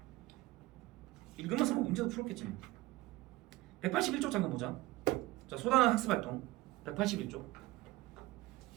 읽으면서 뭐 문제도 풀었겠지. 181쪽 잠깐 보자. 자, 소단은 학습활동 181쪽.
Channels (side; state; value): left; quieter; 18.8 dB